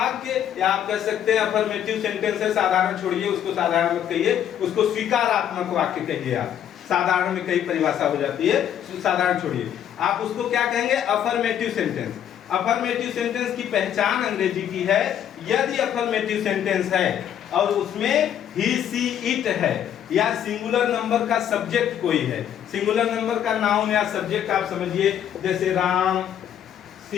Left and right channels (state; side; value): quieter; right; 9.9 dB